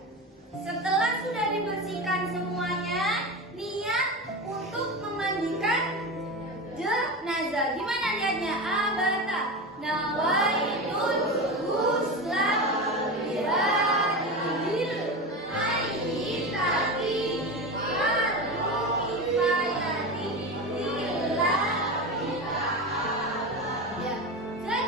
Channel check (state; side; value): normal; both; correlation 0.23